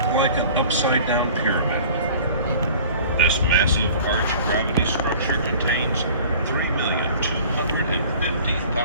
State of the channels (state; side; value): inverted; both; correlation -0.46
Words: like an upside-down pyramid. This massive arch gravity structure contains